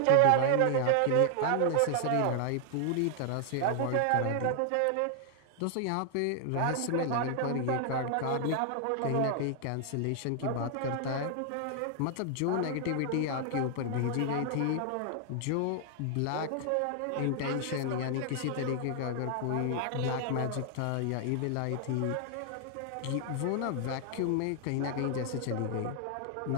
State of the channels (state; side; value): different; both; correlation 0.00